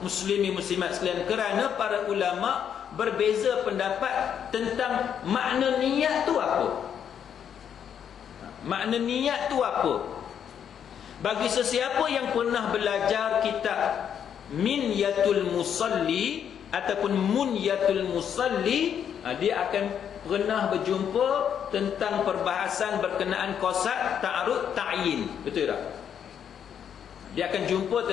Muslimin muslimat sekalian, kerana para ulama berbeza pendapat tentang makna niat tu apa. Makna niat tu apa? Bagi sesiapa yang pernah belajar kitab Minyatul Musalli ataupun Munyatul Musalli, dia akan pernah berjumpa tentang perbahasan berkenaan qasad, ta'arud, ta'yin. Betul tak? Dia akan jumpa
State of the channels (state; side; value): quieter; right; 8.5 dB